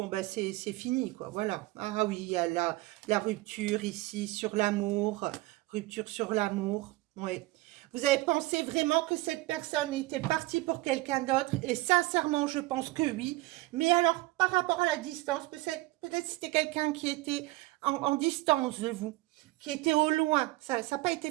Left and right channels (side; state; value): left; quieter; 20.0 dB